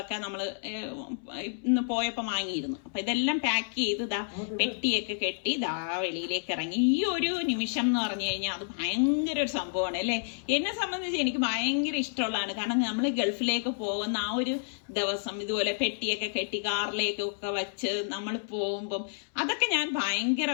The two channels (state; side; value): silent; right; 58 dB below the other